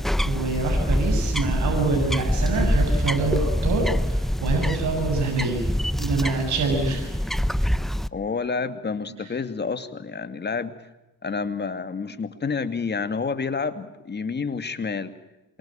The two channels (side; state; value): both; normal; correlation 0.62